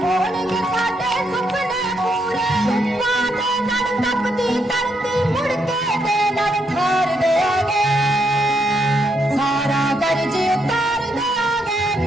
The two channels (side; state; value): both; normal; correlation 0.77